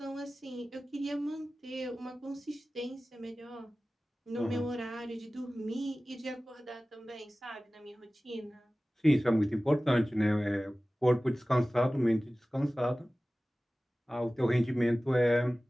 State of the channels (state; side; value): normal; both; correlation 0.97